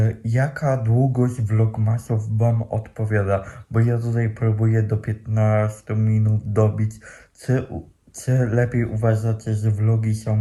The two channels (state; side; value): identical; both; correlation 1.00